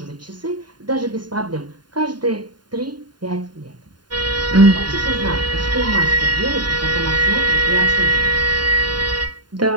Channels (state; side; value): late; left; 0.70 ms